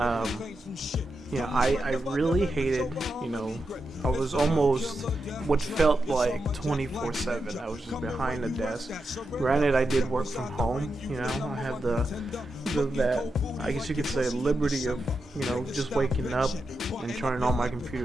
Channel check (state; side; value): normal; both; correlation 0.88